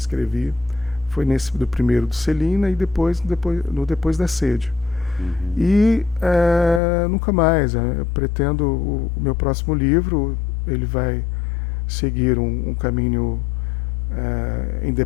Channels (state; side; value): drops out; right; at 6.8 s